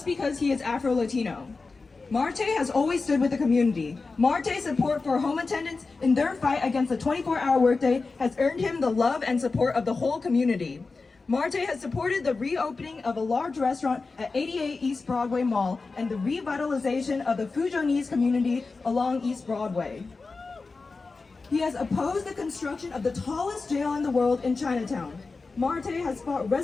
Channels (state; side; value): quieter; right; 4.0 dB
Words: because he is Afro-Latino. Marte has always stood with the community. Marte's support for home attendants in their fight against the 24-hour workday has earned him the love and support of the whole community. Marte has supported the reopening of a large restaurant at 88 East Broadway Mall and the revitalization of the Fujonese community along East Broadway. He has opposed the construction of the tallest jail in the world in Chinatown. Marte has fought